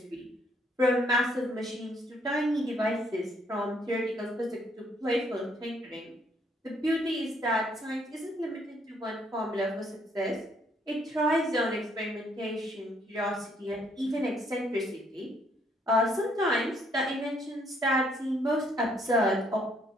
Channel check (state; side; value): normal; both; correlation 0.68